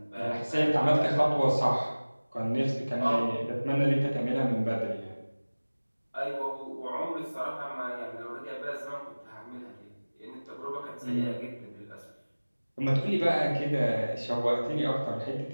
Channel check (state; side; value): inverted; both; correlation -1.00